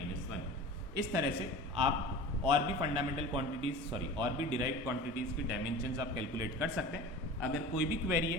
इस तरह से आप और भी फंडामेंटल क्वांटिटीज, सॉरी और भी डिराइव्ड क्वांटिटीज की डायमेंशंस आप कैलकुलेट कर सकते हैं। अगर कोई भी क्वेरी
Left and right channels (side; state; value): both; normal; correlation 0.36